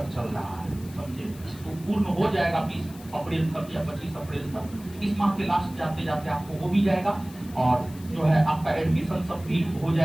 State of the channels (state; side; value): noise; left; hiss, 21 dB below the sound